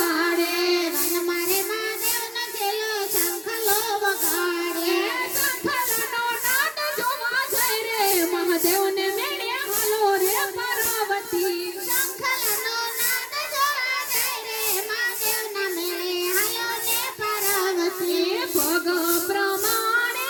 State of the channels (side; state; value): both; identical; correlation 1.00